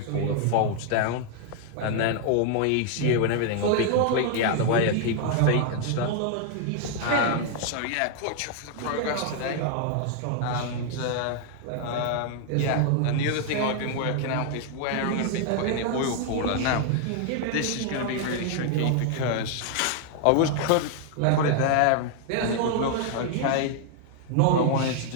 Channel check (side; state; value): both; different; correlation 0.00